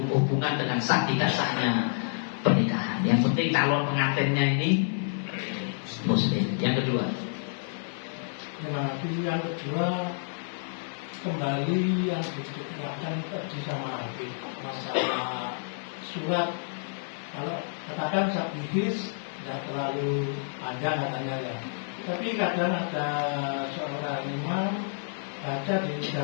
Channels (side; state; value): right; silent; 59 dB below the other